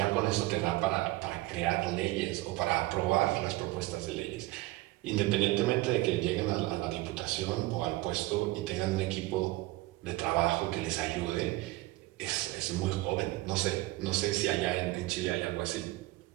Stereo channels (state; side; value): quieter; left; 19.2 dB